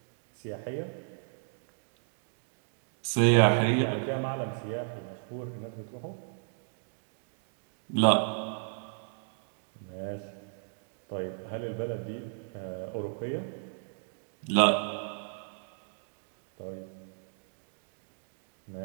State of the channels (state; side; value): silent; left; digital silence